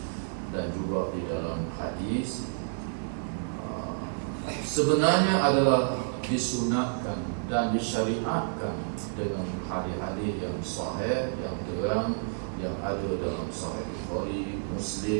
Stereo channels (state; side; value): silent; left; 55 dB below the other